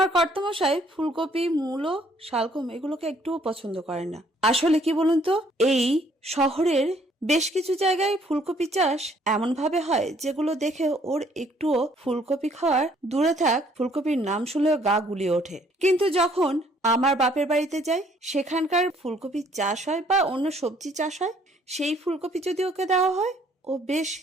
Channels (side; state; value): both; normal; correlation 0.63